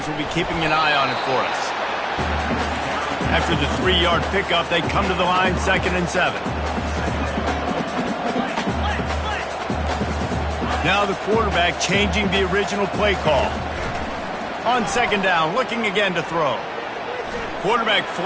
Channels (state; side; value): identical; both; correlation 1.00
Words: will be keeping an eye on it for us. After the 3-yard pickup, they come to the line, 2nd and 7. Now the quarterback changing the original play call. On 2nd down, looking again to throw. Quarterback